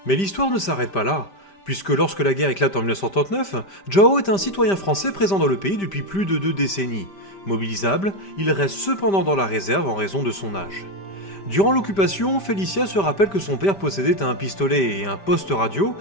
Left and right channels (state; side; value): late; right; 5.1 ms